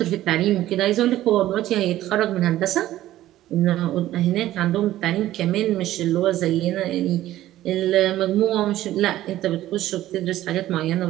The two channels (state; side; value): quieter; left; 14.3 dB